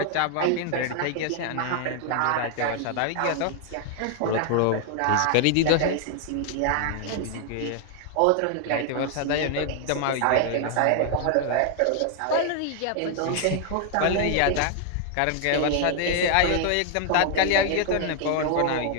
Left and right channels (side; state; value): both; different; correlation 0.00